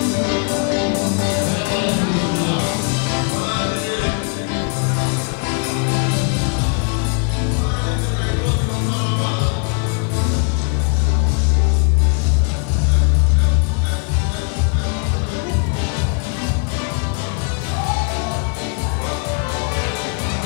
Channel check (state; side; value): quieter; right; 37.4 dB